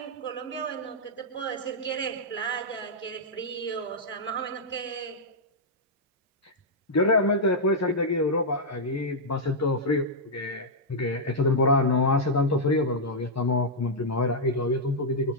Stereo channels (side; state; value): both; normal; correlation -0.07